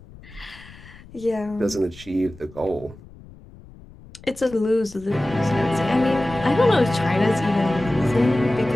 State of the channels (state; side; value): noise; left; rumble, 21 dB below the sound